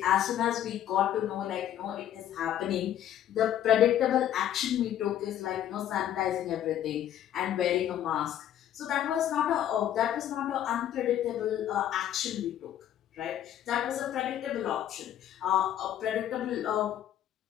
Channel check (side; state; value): right; quieter; 11.1 dB